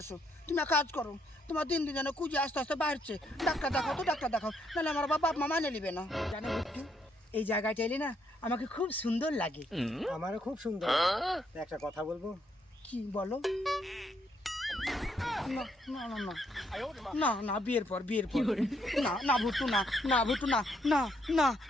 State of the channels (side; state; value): both; normal; correlation 0.73